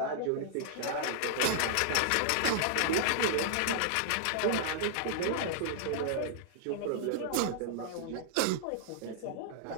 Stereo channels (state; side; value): different; both; correlation -0.01